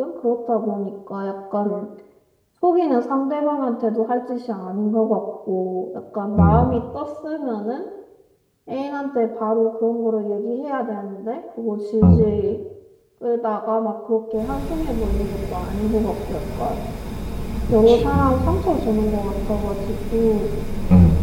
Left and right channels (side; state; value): both; identical; correlation 1.00